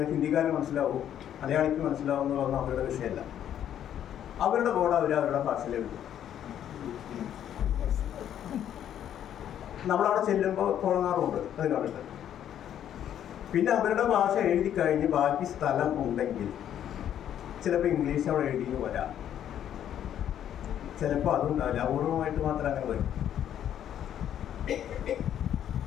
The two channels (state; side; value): quieter; right; 10.3 dB